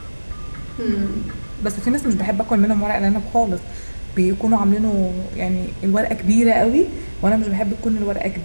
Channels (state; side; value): inverted; both; correlation -1.00